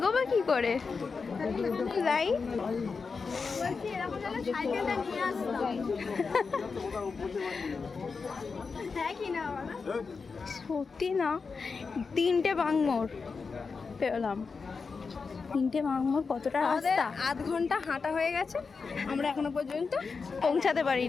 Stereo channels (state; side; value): quieter; right; 4.9 dB